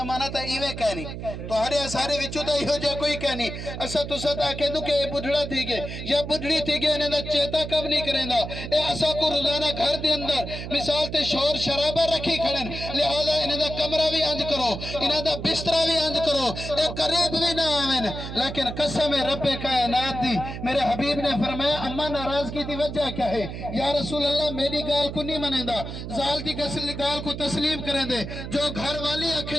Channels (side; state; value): right; noise; hum, 8 dB below the sound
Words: تا ایوے کہنی تو ہرے سارے وچو تا ایہو جا کوئی کہنی اسا تو ستا کہہ دوں کہ اے بڑھڑا تھی گے یا بڑھڑی تھی گے انہیں دا چیتا کب نہیں کریں دا اے اسا کو روزانہ گھر دے اندر مثال تے شور شرابہ رکھی کھڑن لہذا انہیں دا کمرہ بھی انج کرو انہیں دا بسترہ بھی انج کرو اے قریب بھی نہ آمین لیکن قسم رب کائنات دی میرے حبیب نے فرمایا اما ناراضگی دی وجہ کیا ہے یا رسول اللہ میری گال کو نہیں منیں دا زال دی گال کو تسلیم کریں دے جو گھر والی